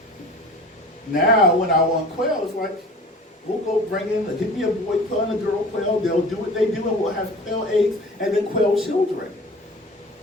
Now when I want quail, it's like, we'll go bring in, get me a boy quail and a girl quail, they'll do what they do and we'll have quail eggs and then quail children.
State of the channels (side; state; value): both; normal; correlation 0.41